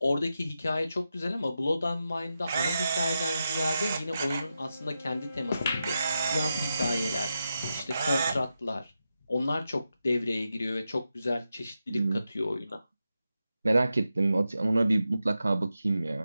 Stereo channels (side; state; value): both; inverted; correlation -0.88